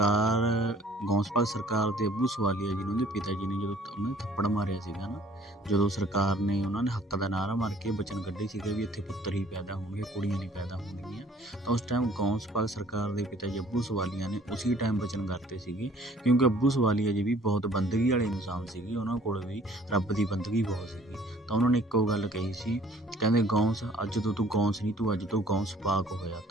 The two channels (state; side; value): normal; both; correlation 0.55